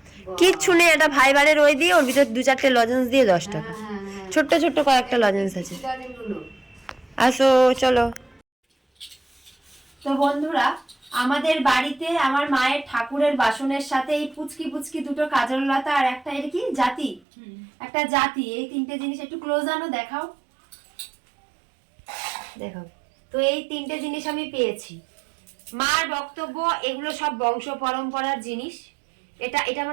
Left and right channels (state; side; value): drops out; left; at 17.2 s